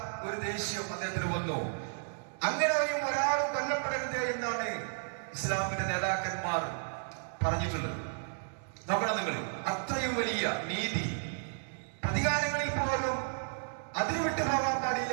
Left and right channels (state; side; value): silent; left; digital silence